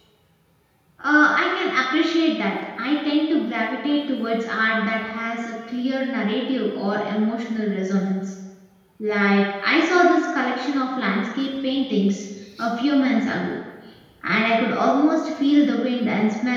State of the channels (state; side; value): identical; both; correlation 1.00